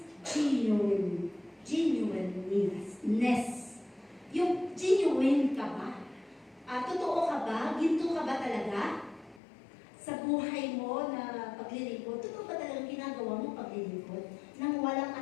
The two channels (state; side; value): drops out; right; at 9.4 s